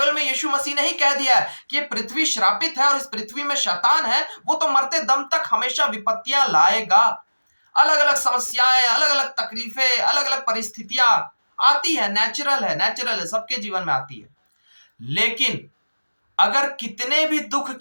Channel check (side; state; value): both; inverted; correlation -1.00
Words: में यीशु मसीह ने ही कह दिया है कि ये पृथ्वी श्रापित है और इस पृथ्वी में शैतान है, वो तो मरते दम तक हमेशा विपत्तियां लाएगा। अलग अलग समस्याएं, अलग अलग तकलीफें, अलग अलग परिस्थितियां आती है, नेचुरल है, सबके जीवन में आती है। लेकिन अगर कितने भी दुख